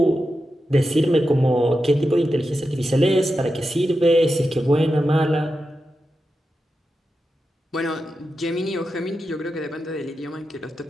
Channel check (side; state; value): both; normal; correlation 0.90